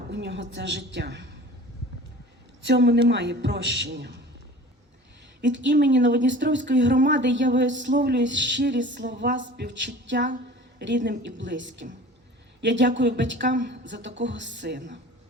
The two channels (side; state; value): both; normal; correlation 0.42